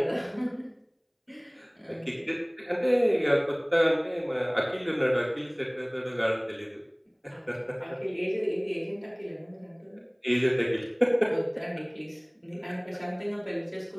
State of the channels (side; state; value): both; identical; correlation 1.00